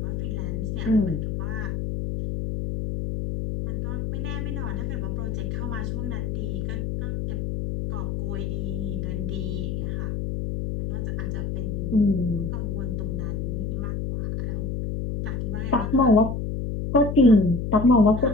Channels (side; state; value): left; noise; hum, 2 dB below the sound